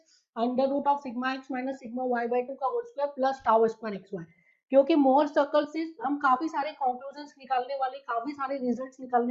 under root of sigma x minus sigma Y by two का whole square plus tau square x y. क्योंकि Mohr circle से हम काफी सारे conclusion निकालने वाले, काफी सारे रिजल्ट्स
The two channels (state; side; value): identical; both; correlation 1.00